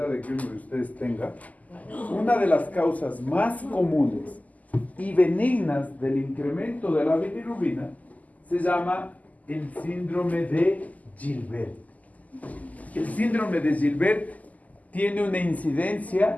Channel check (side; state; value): right; late; 0.077 ms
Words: de que uno de ustedes tenga, una de las causas más comunes y benignas del incremento de la bilirrubina se llama el síndrome de Gilbert. El síndrome de Gilbert tiene una